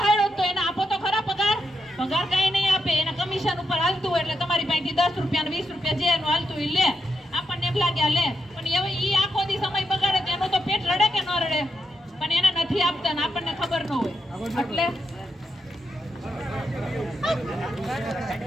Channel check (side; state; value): both; normal; correlation 0.84